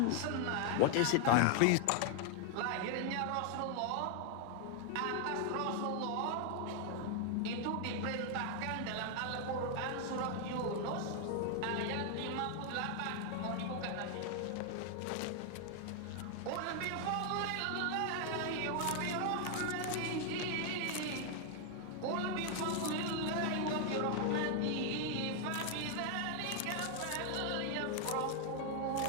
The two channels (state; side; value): different; both; correlation 0.00